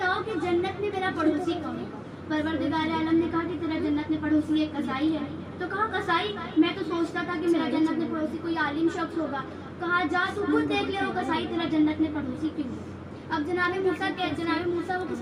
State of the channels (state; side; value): identical; both; correlation 1.00